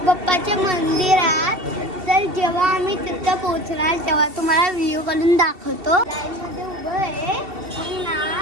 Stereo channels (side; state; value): left; late; 2.7 ms